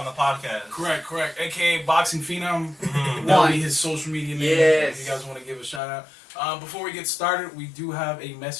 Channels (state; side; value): drops out; right; at 5.8 s